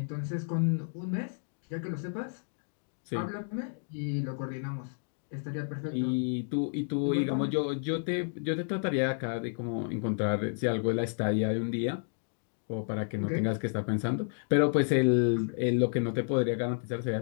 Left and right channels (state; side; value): silent; right; digital silence